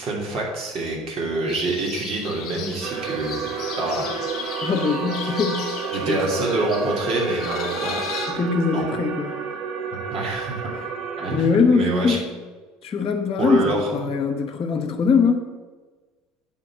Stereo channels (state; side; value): normal; both; correlation 0.54